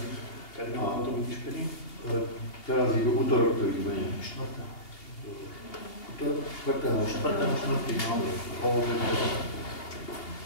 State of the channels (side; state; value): right; late; 2.8 ms